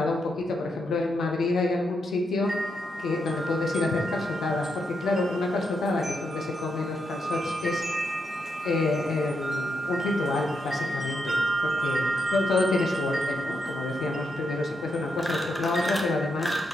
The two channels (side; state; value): both; normal; correlation 0.82